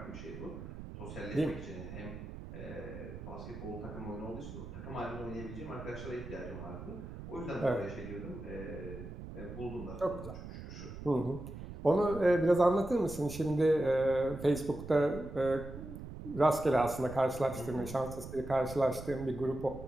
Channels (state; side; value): noise; right; rumble, 11 dB below the sound